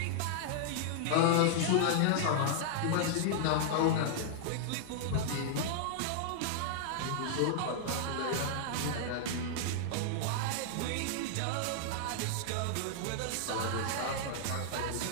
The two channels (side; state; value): both; different; correlation -0.01